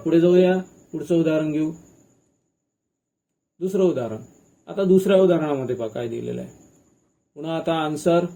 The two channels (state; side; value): identical; both; correlation 1.00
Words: जाऊया, पुढचं उदाहरण घेऊ. दुसरं उदाहरण. आता दुसऱ्या उदाहरणामध्ये पहा काय दिलेलं आहे. पुन्हा आता आन्सर.